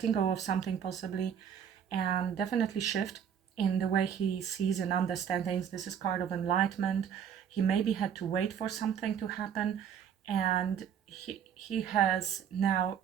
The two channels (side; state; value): left; quieter; 8.3 dB